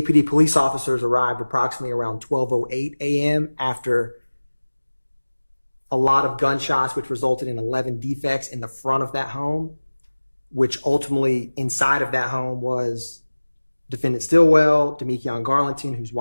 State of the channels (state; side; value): inverted; both; correlation -1.00